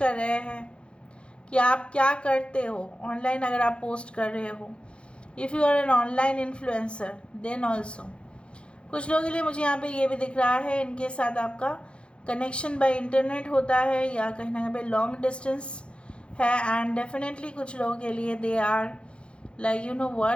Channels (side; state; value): right; late; 0.057 ms